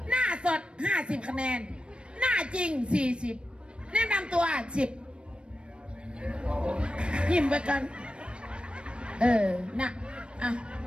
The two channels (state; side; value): late; left; 0.057 ms